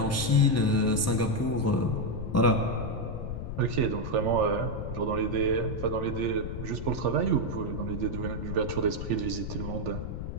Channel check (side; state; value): left; noise; rumble, 6 dB below the sound